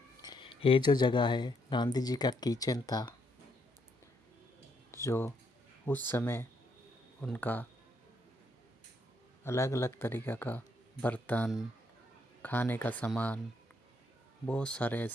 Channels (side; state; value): both; normal; correlation 0.74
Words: ये जो जगह है गांधी जी का किचन था, जो उस समय उनका अलग अलग तरीक़े का बर्तन, खाने का सामान, बहुत सारे